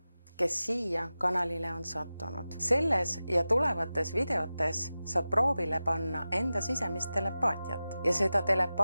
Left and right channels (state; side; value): inverted; both; correlation -0.95